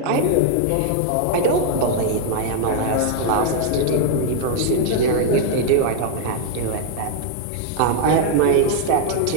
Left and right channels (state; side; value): different; both; correlation 0.00